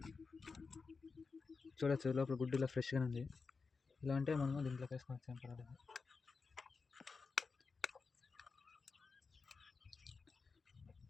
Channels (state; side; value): quieter; right; 4.7 dB